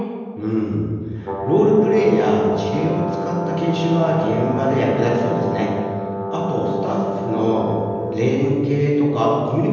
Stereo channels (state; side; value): identical; both; correlation 1.00